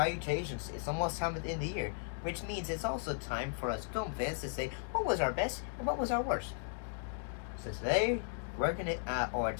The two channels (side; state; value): right; silent; digital silence